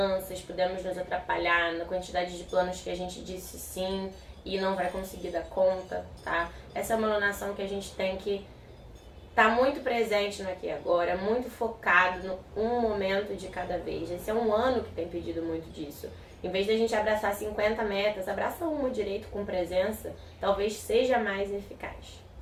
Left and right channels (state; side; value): identical; both; correlation 1.00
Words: podemos nos atrapalhar na quantidade de planos que a gente disse sim e não vai conseguir dar conta, tá? Essa é uma alunação que a gente tem que estar muito presente no aqui e agora, muito focado no um momento de cada vez. Esse é um ano que tem pedido muito disso. Em vez de a gente abraçar 50 metas, abraça uma direito com presença, talvez seja mais eficaz,